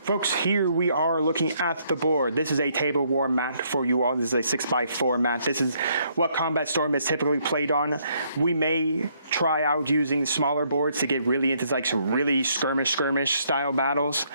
Folks, here we are looking at the board. This is a table war map for you all. This is a 6x4 map. This is what Combat Storm is typically played on. We may try out using smaller boards to get really into like some really skirmish style battles,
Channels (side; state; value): both; inverted; correlation -0.70